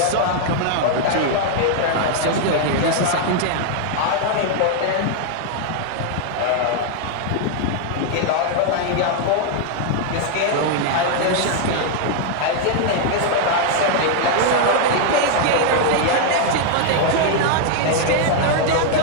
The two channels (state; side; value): different; both; correlation 0.00